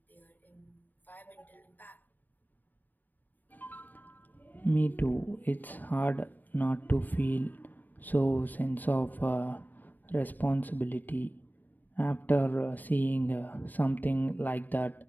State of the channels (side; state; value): right; late; 0.087 ms